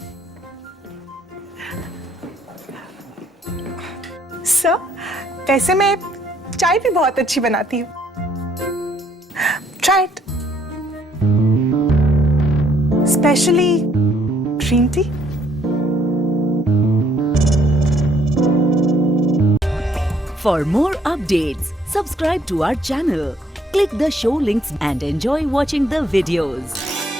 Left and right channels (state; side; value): normal; both; correlation 0.66